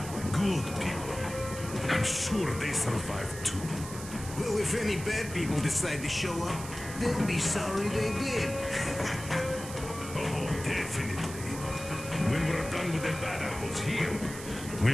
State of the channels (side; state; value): right; noise; hiss, 12 dB below the sound